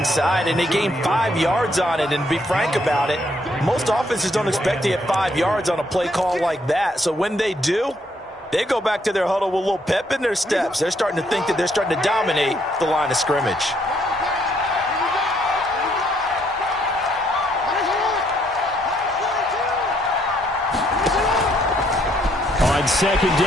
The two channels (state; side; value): normal; both; correlation 0.70